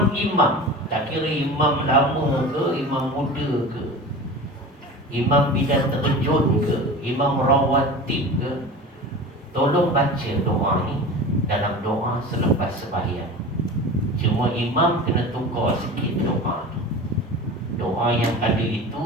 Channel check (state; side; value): normal; both; correlation 0.33